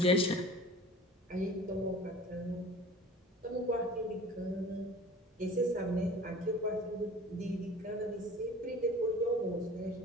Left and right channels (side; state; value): both; normal; correlation 0.42